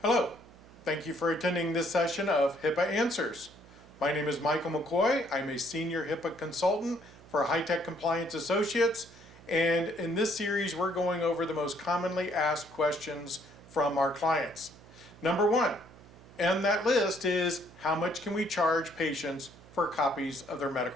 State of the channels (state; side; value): noise; right; hum, 22 dB below the sound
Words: Hello, thank you for attending this session of HIPAA Answers. My name is Michael McCoy. I'm a senior HIPAA consultant for High-Tech Compliance Associates, and in this series we're going over the most commonly asked questions from our clients. Number one on that list is, how much can we charge patients for copies of their